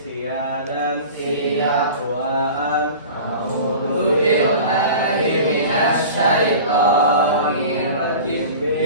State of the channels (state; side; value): inverted; both; correlation -0.38